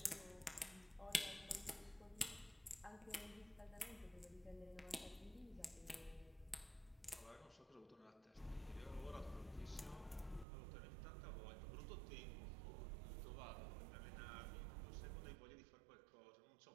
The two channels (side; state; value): left; drops out; at 10.5 s